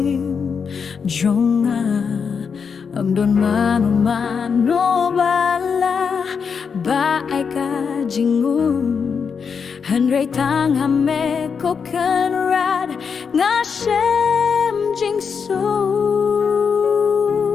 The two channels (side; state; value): right; quieter; 6.1 dB